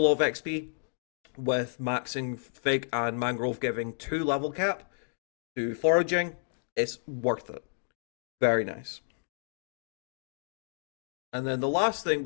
of XP, with maxing Fig and Mangrove giving 2 level cap to Foraging. It's worth it. Very nice. And then the last thing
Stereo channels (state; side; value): silent; right; digital silence